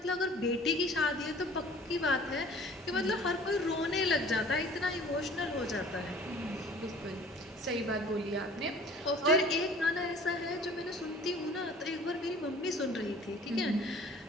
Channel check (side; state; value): both; normal; correlation 0.48